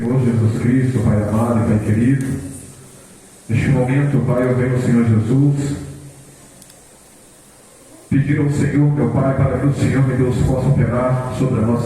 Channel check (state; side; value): identical; both; correlation 1.00